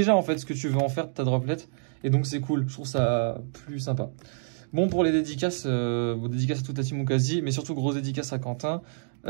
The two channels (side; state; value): left; silent; digital silence